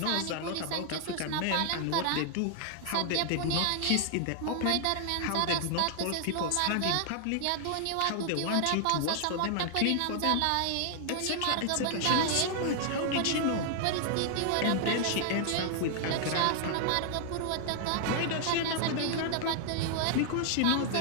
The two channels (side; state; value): both; different; correlation 0.00